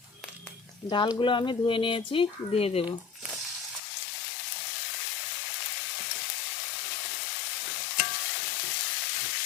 ডালগুলো আমি ধুয়ে নিয়েছি, দিয়ে দেব।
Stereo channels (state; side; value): drops out; right; at 3.8 s